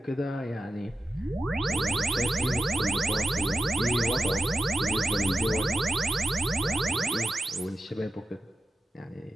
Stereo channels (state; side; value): normal; both; correlation 0.91